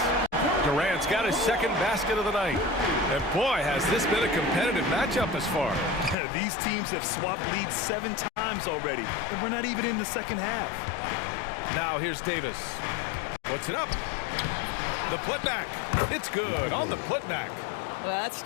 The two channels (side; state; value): right; drops out; at 6.2 s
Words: Durant's got his second basket of the night. And boy, has this been a competitive matchup thus far. These teams have swapped leads 7 times already, and we're not even in the second half. Now here's Davis. Puts it up. The putback. It's good on the putback. Well, that's